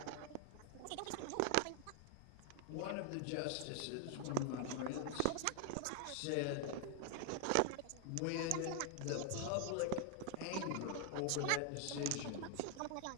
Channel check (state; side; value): different; both; correlation 0.00